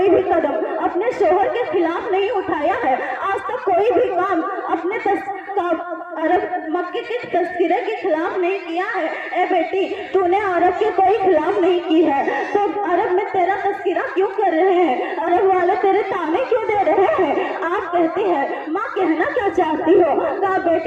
भी कदम अपने शोहर के खिलाफ नहीं उठाया है, आज तक कोई भी काम अपने अरब मक्के के तस्करे के खिलाफ नहीं किया है। ए बेटी, तूने अरब के कोई खिलाफ नहीं की है तो अरब में तेरा तस्करा क्यों कर रहे हैं? अरब वाले तेरे ताने क्यों दे रहे हैं? आप कहती है माँ कहना क्या चाहती हो? कहा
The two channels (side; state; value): both; identical; correlation 1.00